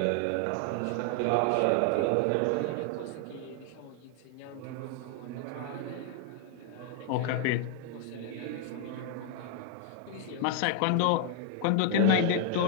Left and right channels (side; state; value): both; different; correlation 0.00